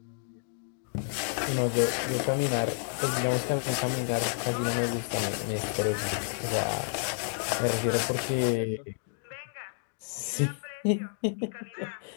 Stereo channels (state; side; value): silent; right; digital silence